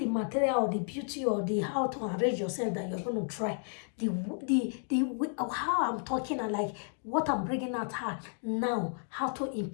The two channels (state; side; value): silent; right; 56 dB below the other